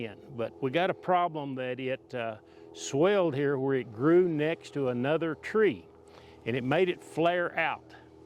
but we got a problem that it swelled here where it grew next to another tree and it made it flare out.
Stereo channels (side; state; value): both; identical; correlation 1.00